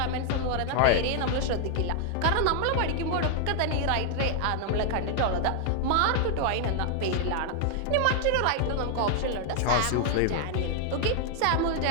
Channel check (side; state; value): both; different; correlation 0.00